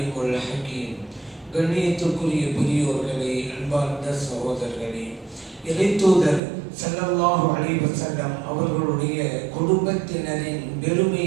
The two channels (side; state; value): left; drops out; at 6.4 s